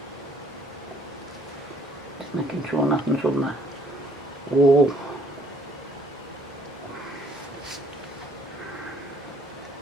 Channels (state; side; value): normal; both; correlation 0.61